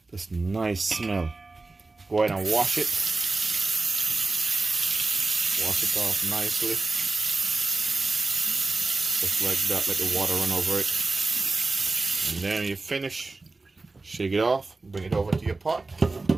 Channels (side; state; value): left; quieter; 3.5 dB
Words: This nice smell. Go ahead and wash it. Wash it off nicely. Just like that, let the water run over it. And then you finish. Shake it off, bring it over to your pot.